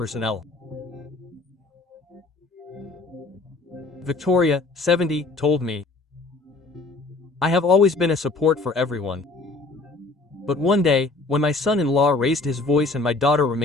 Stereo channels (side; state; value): right; quieter; 3.4 dB